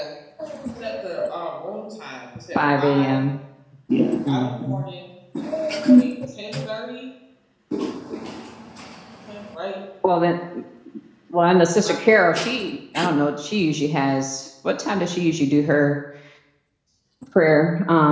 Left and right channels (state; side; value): identical; both; correlation 1.00